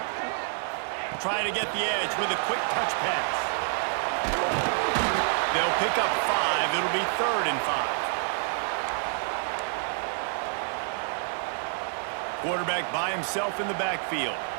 Trying to get the edge with a quick touch pass. They'll pick up 5. It'll be 3rd and 5. Quarterback by himself in the backfield.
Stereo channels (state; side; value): silent; left; 59 dB below the other